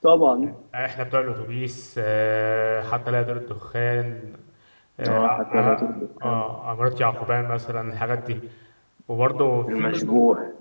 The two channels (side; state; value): both; inverted; correlation -1.00